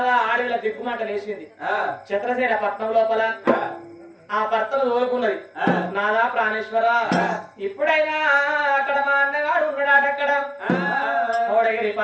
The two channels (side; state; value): both; identical; correlation 1.00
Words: ఆడవిల దిగ్గుమాట లేచింది. చిత్రసేన పట్నం లోపల ఆ భర్తను తోలుకున్నది. నాదా ప్రాణేశ్వర ఇప్పుడైనా అక్కడ మా అన్నగాడు ఉన్నాడు. అక్కడ కోడగిరి